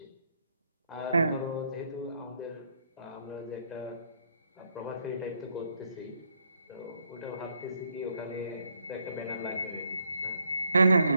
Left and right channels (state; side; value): inverted; both; correlation -0.73